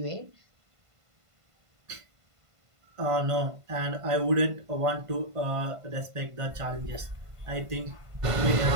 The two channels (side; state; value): left; late; 1.5 ms